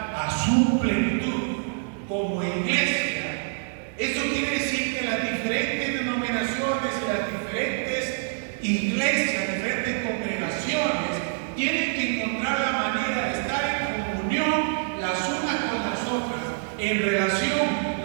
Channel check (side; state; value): left; silent; digital silence